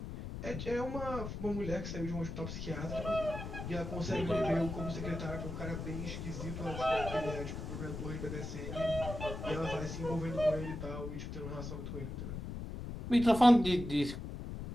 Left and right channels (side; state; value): left; noise; rumble, 6 dB below the sound